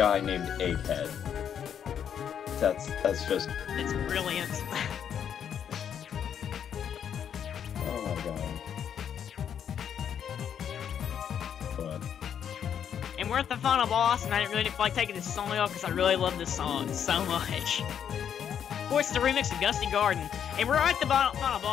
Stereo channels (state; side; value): quieter; right; 8.6 dB